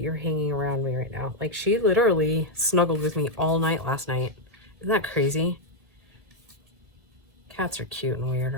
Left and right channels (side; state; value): left; late; 1.7 ms